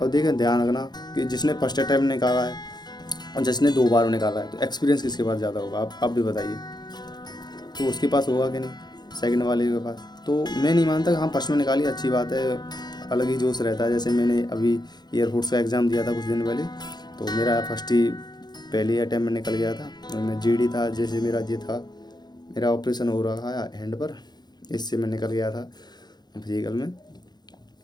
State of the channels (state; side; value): late; right; 0.20 ms